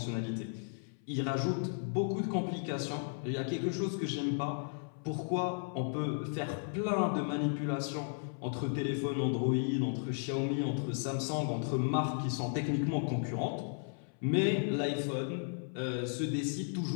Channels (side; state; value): right; silent; 55 dB below the other